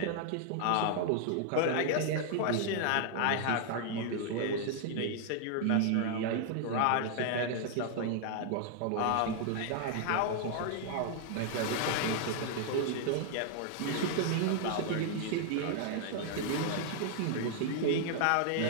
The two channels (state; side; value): different; both; correlation 0.00